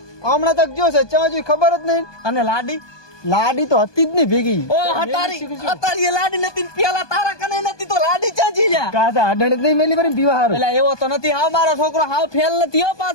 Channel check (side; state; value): right; late; 1.2 ms